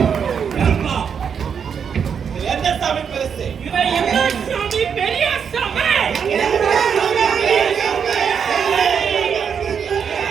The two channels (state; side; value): quieter; left; 7.1 dB